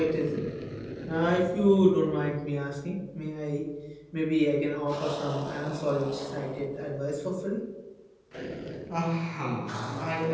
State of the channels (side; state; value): both; identical; correlation 1.00